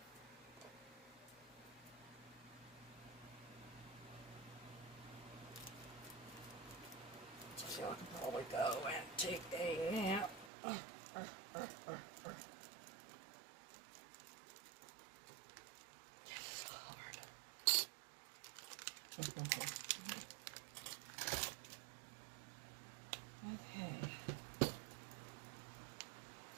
So I can probably go and take a nap. Okay.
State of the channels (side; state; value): left; drops out; at 10.5 s